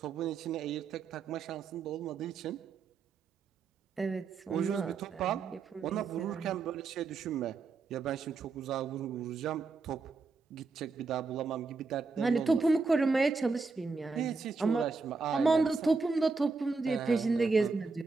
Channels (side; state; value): left; quieter; 4.3 dB